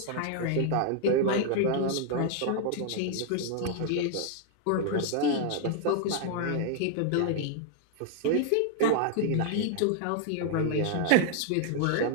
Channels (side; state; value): both; different; correlation 0.00